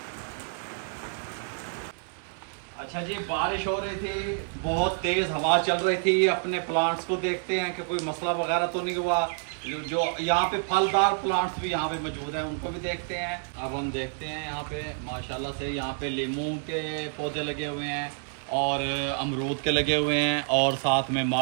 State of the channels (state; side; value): silent; left; 59 dB below the other